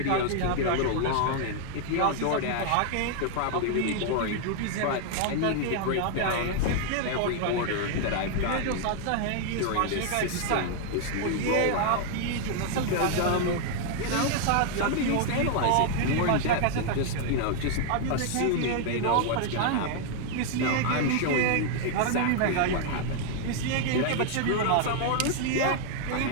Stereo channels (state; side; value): different; both; correlation 0.00